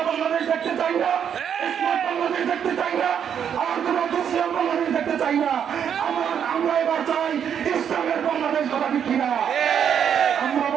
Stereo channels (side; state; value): left; quieter; 8.3 dB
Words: বাংলাদেশ দেখতে চাই না, স্মার্ট বাংলাদেশ দেখতে চাই না, আর কোন দুঃশীল বাংলাদেশ দেখতে চাই না। আমরা এবার চাই ইসলামের বাংলাদেশ কথা ঠিক কিনা? আমরা